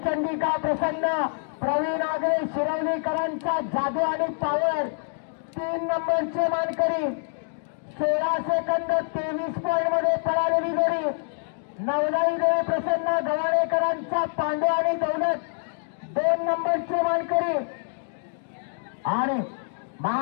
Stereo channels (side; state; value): right; silent; digital silence